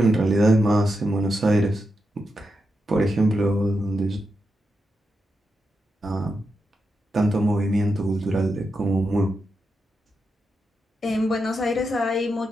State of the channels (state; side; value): normal; both; correlation 0.86